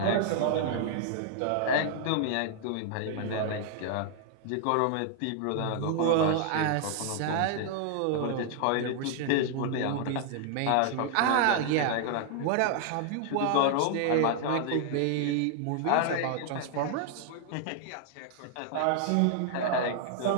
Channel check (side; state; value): both; different; correlation -0.01